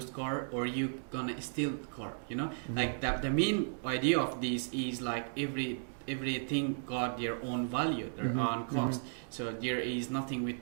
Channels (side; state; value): left; silent; digital silence